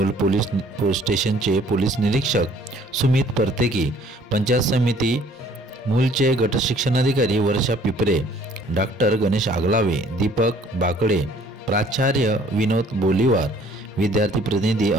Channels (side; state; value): both; normal; correlation 0.57